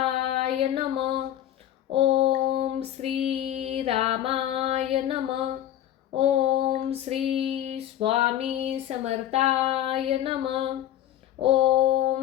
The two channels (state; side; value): quieter; right; 12.0 dB